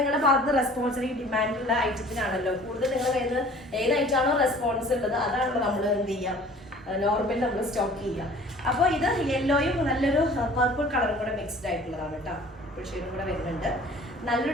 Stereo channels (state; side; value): normal; both; correlation 0.49